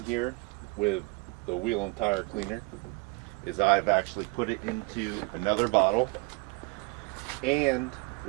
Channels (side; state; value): left; quieter; 26.7 dB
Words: here with the wheel and tire cleaner is I've actually put it into another bottle. And